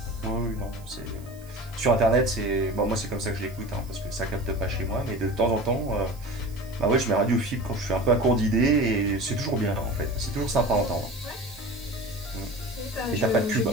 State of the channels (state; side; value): noise; right; hiss, 24 dB below the sound